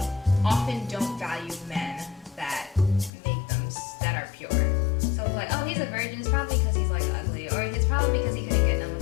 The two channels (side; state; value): right; drops out; at 3.1 s